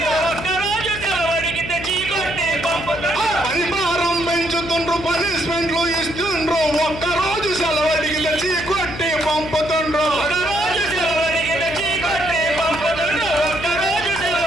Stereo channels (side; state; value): left; noise; hum, 11 dB below the sound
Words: పనిభారం పెంచుతుండ్రు, పనిష్మెంట్లు ఇస్తుండ్రు, ఒక్కరోజు సెలవు అడిగితే చీకొట్టి పంపుతుండ్రు.